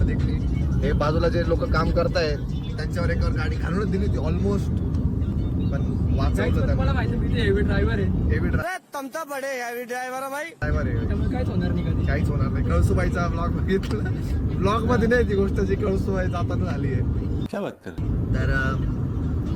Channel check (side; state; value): both; identical; correlation 1.00